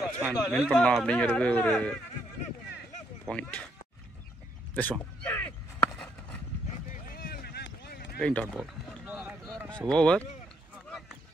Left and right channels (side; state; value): both; normal; correlation 0.72